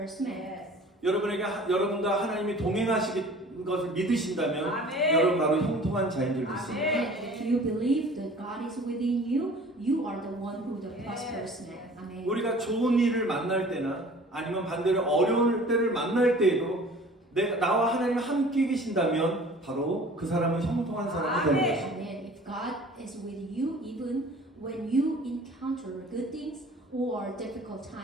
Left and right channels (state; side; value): normal; both; correlation 0.47